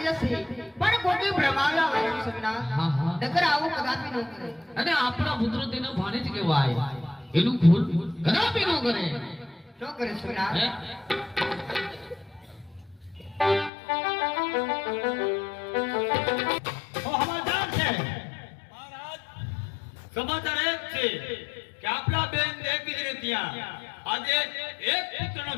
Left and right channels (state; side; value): drops out; right; at 13.7 s